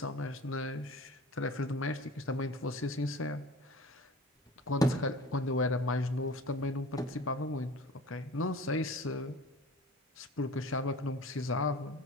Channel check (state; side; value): normal; both; correlation 0.40